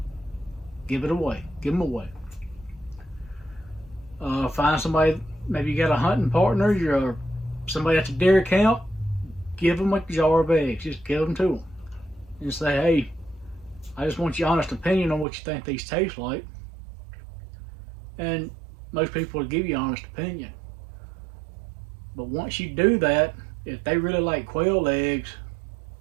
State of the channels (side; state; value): left; drops out; at 15.2 s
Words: Give it away. Give them away. Find somebody, maybe you got a hunting partner, you're somebody at the dairy camp, give them a jar of eggs. Just give them to them. And say, hey, I just want your honest opinion on what you think these taste like. And most people will give you an honest opinion. But once you do that, if they really like quail eggs,